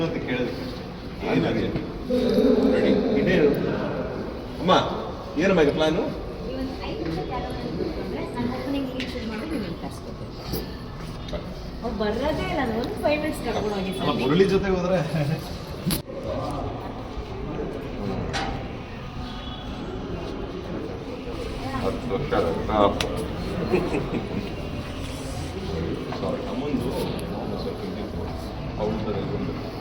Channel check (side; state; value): both; identical; correlation 1.00